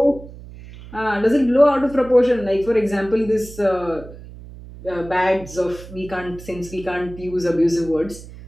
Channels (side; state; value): right; noise; hum, 16 dB below the sound